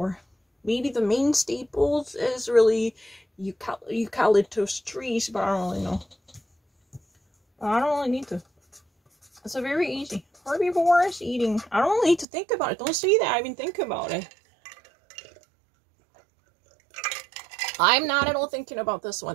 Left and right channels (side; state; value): left; drops out; at 12.2 s